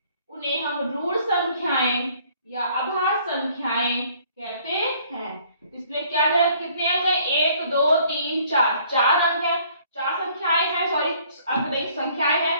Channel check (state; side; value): inverted; both; correlation -0.60